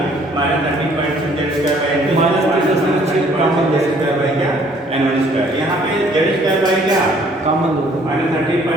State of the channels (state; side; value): normal; both; correlation 0.60